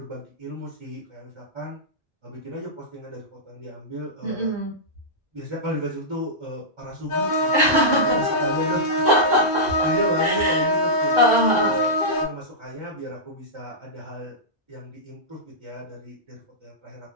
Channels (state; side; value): normal; both; correlation -0.13